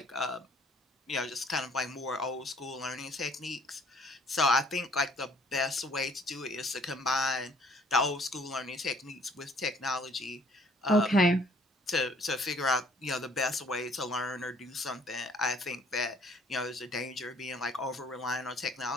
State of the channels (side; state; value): both; normal; correlation 0.59